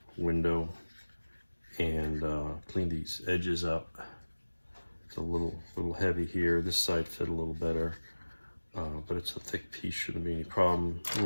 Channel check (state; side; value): inverted; both; correlation -1.00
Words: window and clean these edges up. It's a little heavy here. This side fit a little better. But it's a thick piece, shouldn't be any problem. A